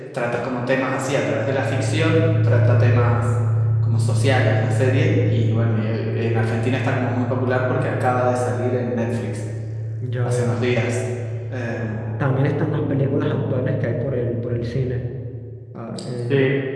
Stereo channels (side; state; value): both; identical; correlation 1.00